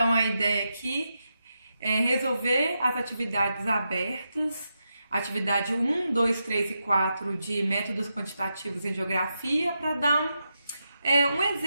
a ideia aqui é resolver as atividades abertas, atividade 1, 2, 3 e 4 de métodos quantitativos em geografia, para dar um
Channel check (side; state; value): both; inverted; correlation -0.87